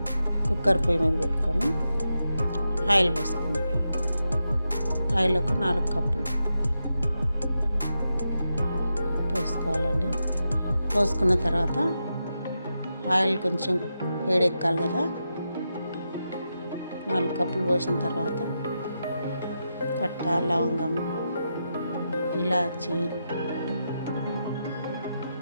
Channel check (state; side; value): inverted; both; correlation -0.87